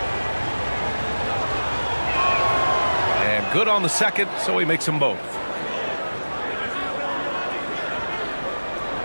And good on the second, so he makes them both.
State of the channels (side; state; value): both; inverted; correlation -1.00